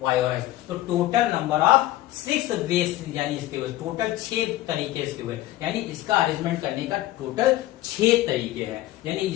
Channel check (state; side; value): quieter; right; 15.8 dB